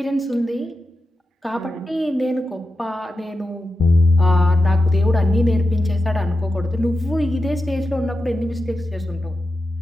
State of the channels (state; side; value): normal; both; correlation 0.90